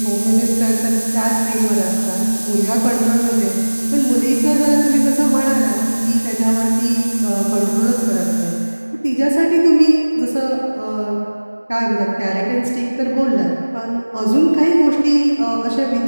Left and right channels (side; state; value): both; inverted; correlation -1.00